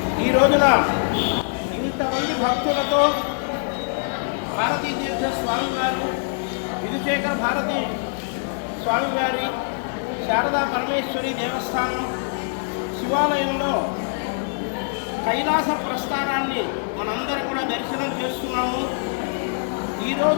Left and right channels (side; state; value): right; silent; digital silence